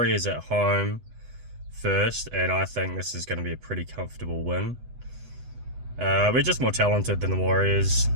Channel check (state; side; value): late; left; 8.0 ms